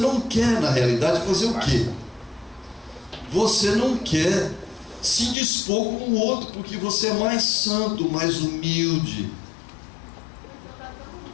quer, na realidade, fazer o quê? Você não quer se dispor com o outro, porque você é mais santo, mais humilde.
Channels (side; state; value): right; drops out; at 5.4 s